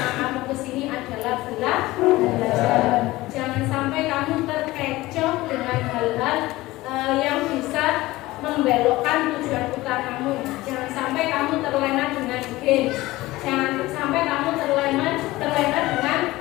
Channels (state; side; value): quieter; right; 18.6 dB